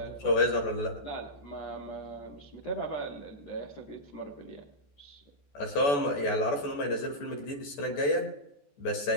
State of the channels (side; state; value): right; late; 14 ms